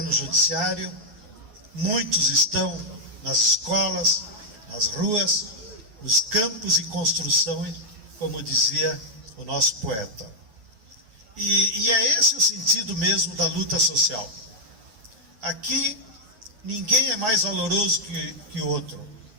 judiciário, muitos estão nas escolas, nas ruas, nos campos em construção, como dizia o nosso poeta. E é esse o sentido mesmo da luta social. Aqui ninguém é mais valoroso que o outro.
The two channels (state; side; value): late; left; 9.5 ms